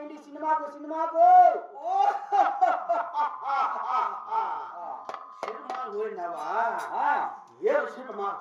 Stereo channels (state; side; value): identical; both; correlation 1.00